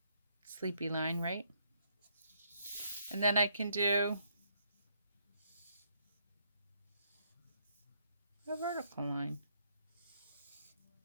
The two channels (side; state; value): both; inverted; correlation -0.72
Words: Sleepy line, right? And then I can do a vertical line.